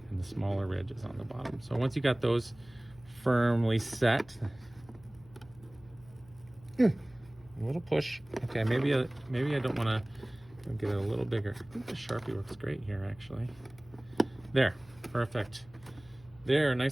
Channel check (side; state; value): left; noise; hum, 25 dB below the sound